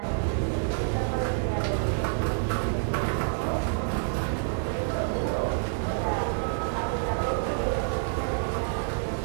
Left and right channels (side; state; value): left; silent; digital silence